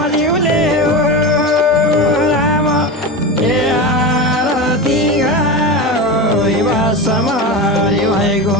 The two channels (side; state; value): both; normal; correlation 0.23